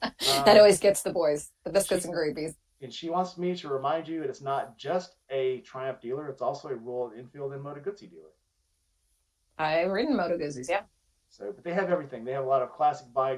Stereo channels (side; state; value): both; identical; correlation 1.00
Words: That always gets the boys, the biscuits She and gravies. and she wants me to remind you that it's not just a Triumph dealer; it's also a Royal Enfield and Moto Guzzi dealer. I've ridden Moto Guzzi's, yeah. So, but they have everything. They have a lot of classic